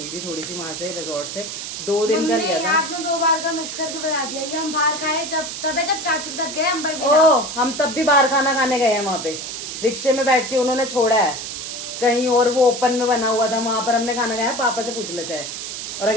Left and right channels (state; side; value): noise; right; hiss, 7 dB below the sound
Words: थी थोड़ी सी वहाँ से रिजॉर्ट से, 2 दिन का लिया था। आपने 2 बार का मिक्स करके बता दिया, ये हम बाहर खाए जब चाचू के साथ गए अंबर ओ हम तब भी बाहर खाना खाने गए हैं, वहाँ पे रिक्शे में बैठ के उन्होंने छोड़ा है कहीं और, वो ओपन में बना हुआ था, वहाँ पर हमने खाना खाया, पापा से पूछ लो चाहे, और